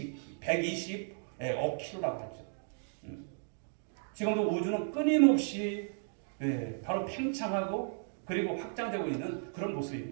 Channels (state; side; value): silent; left; digital silence